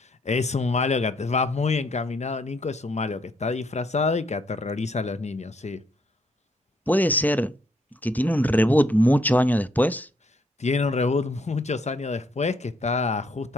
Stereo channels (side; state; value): both; normal; correlation 0.70